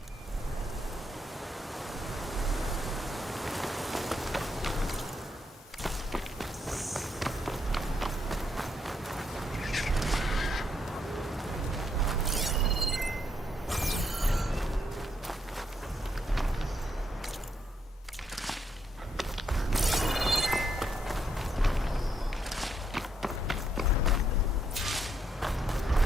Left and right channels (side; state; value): both; normal; correlation 0.76